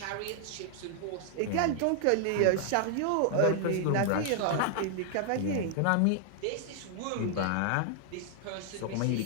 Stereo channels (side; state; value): both; different; correlation 0.00